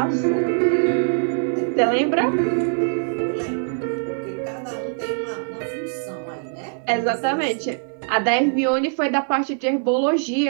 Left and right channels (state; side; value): silent; left; digital silence